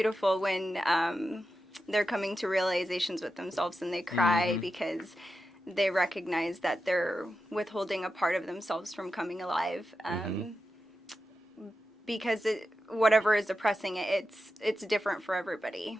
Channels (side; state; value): both; normal; correlation 0.90